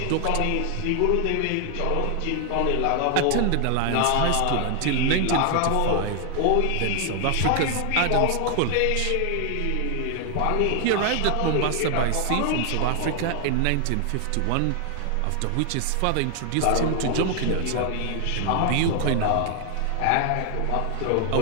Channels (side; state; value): both; different; correlation 0.00